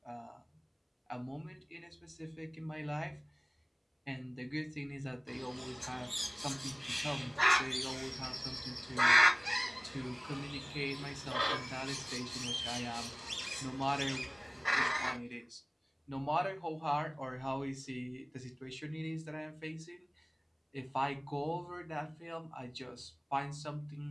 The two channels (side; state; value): both; identical; correlation 1.00